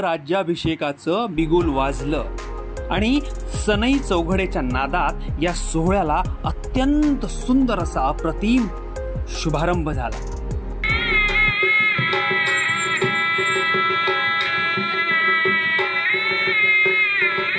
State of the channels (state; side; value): identical; both; correlation 1.00